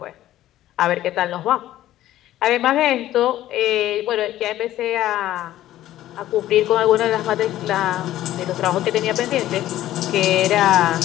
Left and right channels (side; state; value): right; quieter; 13.8 dB